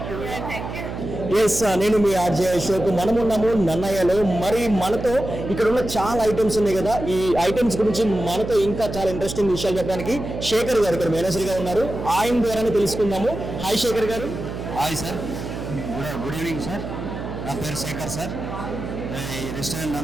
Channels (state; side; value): noise; right; hum, 7 dB below the sound